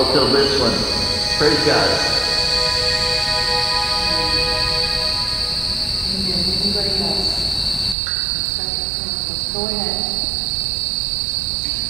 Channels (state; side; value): drops out; left; at 8.0 s